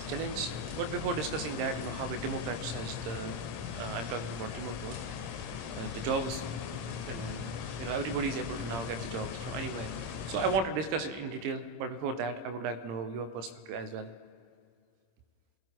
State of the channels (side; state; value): left; late; 26 ms